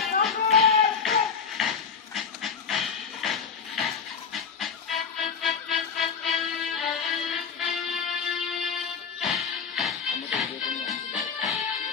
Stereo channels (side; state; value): right; quieter; 6.2 dB